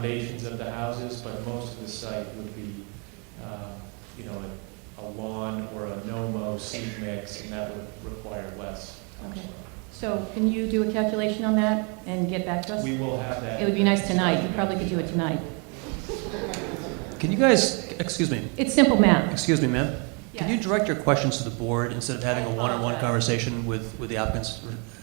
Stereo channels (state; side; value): quieter; left; 35.1 dB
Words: of the houses, but most of the site would be, a lawn or a no-mow seed mix, and that would require less Okay. topsoil. So can you do a calculation on that and get back to us? We will have that. It would be nice tonight. You probably could do it tonight. Can you guys, excuse me, It's simple math. excuse me, ma'am? Yeah. Can you direct your questions to the board instead of having a one-on-one conversation with the applicants?